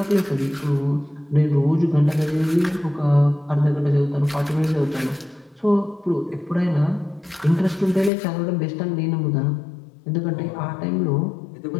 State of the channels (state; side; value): drops out; right; at 8.1 s